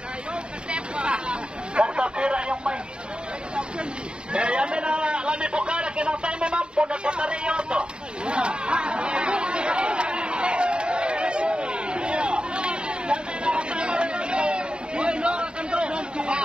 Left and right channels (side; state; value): left; late; 0.051 ms